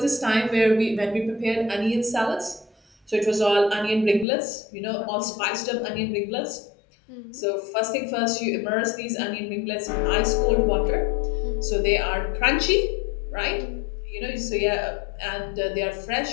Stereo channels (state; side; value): drops out; right; at 4.2 s